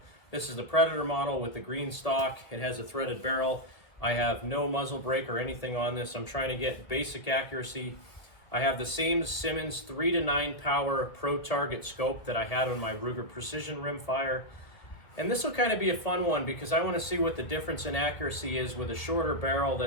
This is the Predator model with the green stock. It has a threaded barrel. I have no muzzle brake or anything on this. I'm trying to get basic accuracy. I have the same Simmons 3 to 9 power pro target scope that I had on my Ruger Precision Rimfire. And this will kind of be a fun one because I want to see what the difference in accuracy is with a shorter barrel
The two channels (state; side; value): late; right; 1.5 ms